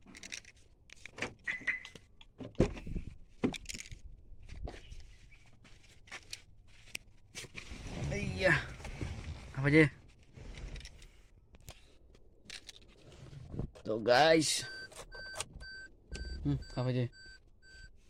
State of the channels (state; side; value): identical; both; correlation 1.00